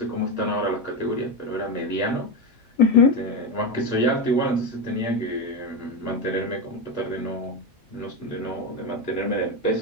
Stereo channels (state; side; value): normal; both; correlation 0.13